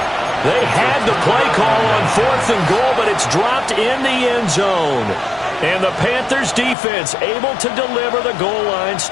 They had the play call on 4th and goal, but it's dropped in the end zone. And the Panthers defense able to deliver the goal line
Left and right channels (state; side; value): drops out; right; at 6.8 s